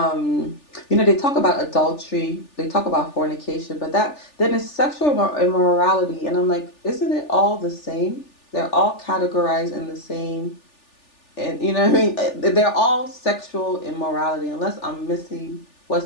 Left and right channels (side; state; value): right; late; 3.4 ms